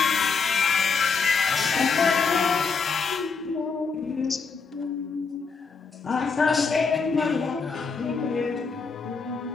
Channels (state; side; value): quieter; right; 5.0 dB